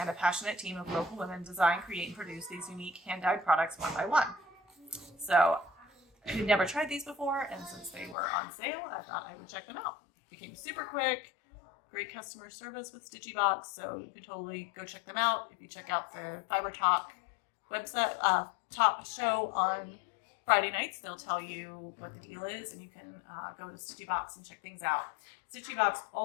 a passionate team of local women design, create, and produce these unique hand-dyed products one by one. So I had never tried these before, and since they were on sale, I thought I would check them out. They came super quick, great customer service with Stitchy Box, so you can totally go check them out. If you check out the Fiber Talk website top show on Friday nights, they'll tell you what the deal is, and you can go to Stitchy Box and check things out. Stitchy Box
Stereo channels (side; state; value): right; drops out; at 8.2 s